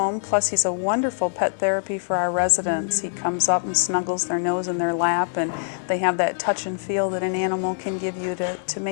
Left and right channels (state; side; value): silent; right; digital silence